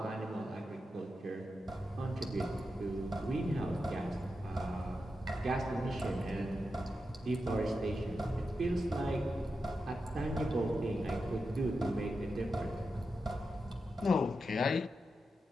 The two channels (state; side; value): normal; both; correlation 0.88